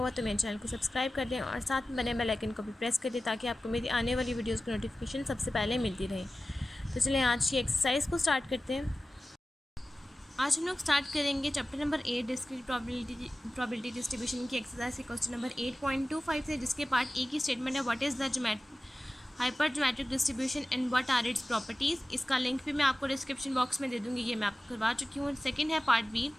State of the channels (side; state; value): both; normal; correlation 0.96